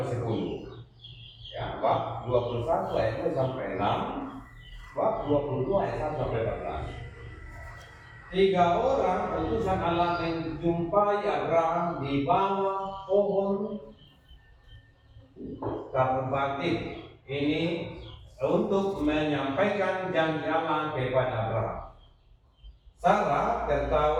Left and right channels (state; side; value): identical; both; correlation 1.00